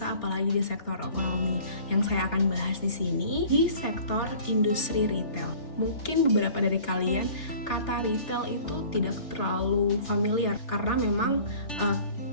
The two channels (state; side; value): late; right; 3.4 ms